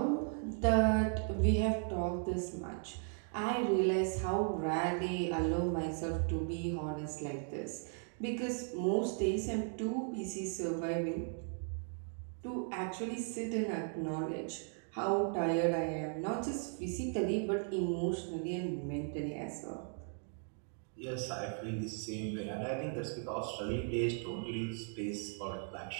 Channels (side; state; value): left; silent; 53 dB below the other